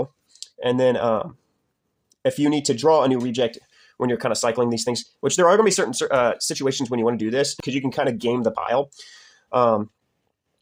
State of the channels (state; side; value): identical; both; correlation 1.00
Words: And then if you need to draw a new reject when you're kind of cycling these things, which there are going to be certain situations when you want to do this because you can kind of game the pile.